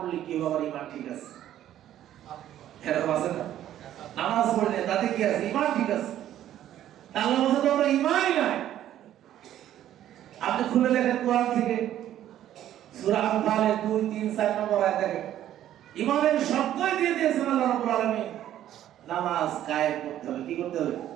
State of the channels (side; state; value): left; quieter; 11.9 dB